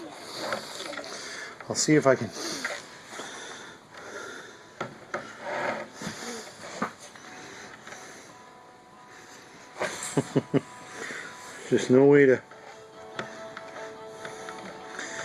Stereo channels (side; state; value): both; identical; correlation 1.00